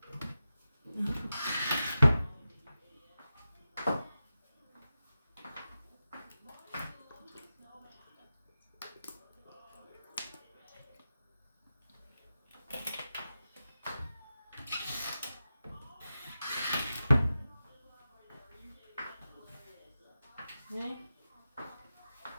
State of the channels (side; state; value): both; inverted; correlation -0.92